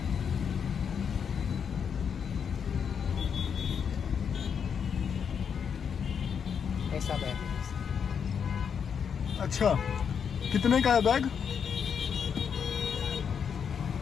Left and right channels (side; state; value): right; quieter; 7.1 dB